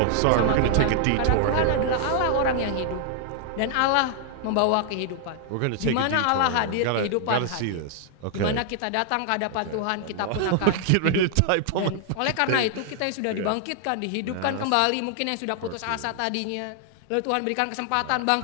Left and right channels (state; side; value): different; both; correlation 0.00